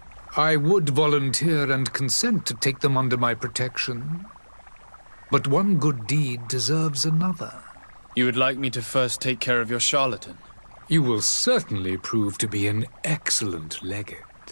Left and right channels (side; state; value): both; inverted; correlation -1.00